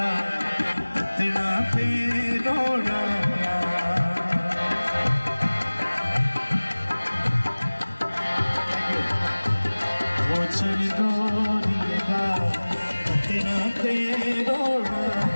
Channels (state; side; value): inverted; both; correlation -1.00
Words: तेरा पे रोड़ा भूषण डोरी